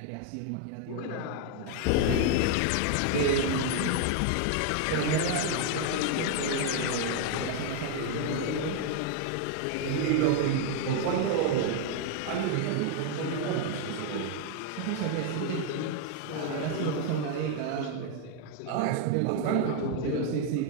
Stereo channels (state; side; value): different; both; correlation 0.00